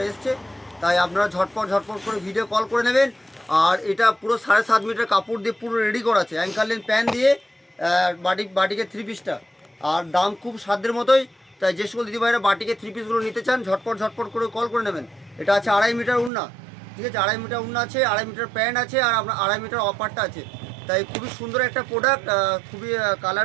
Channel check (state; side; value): drops out; left; at 16.3 s